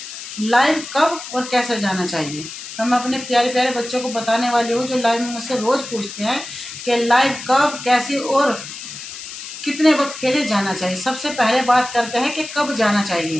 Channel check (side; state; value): left; noise; hiss, 11 dB below the sound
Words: लाइव कब और कैसे जाना चाहिए। तो मैं अपने प्यारे प्यारे बच्चों को बताने वाली हूँ जो लाइव में मुझसे रोज़ पूछते हैं कि लाइव कब, कैसे और कितने वक्त के लिए जाना चाहिए। सबसे पहले बात करते हैं कि कब जाना